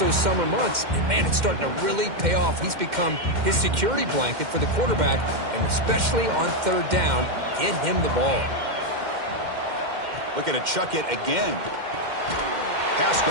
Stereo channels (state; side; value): late; left; 2.1 ms